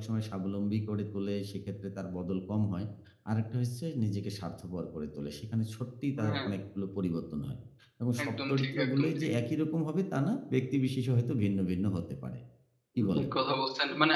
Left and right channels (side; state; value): both; identical; correlation 1.00